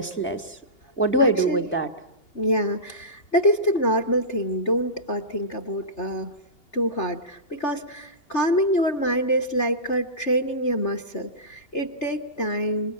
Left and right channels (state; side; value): late; right; 2.8 ms